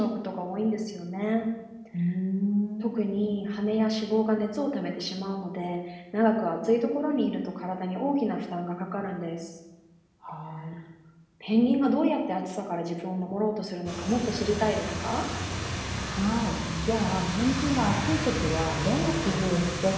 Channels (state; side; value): identical; both; correlation 1.00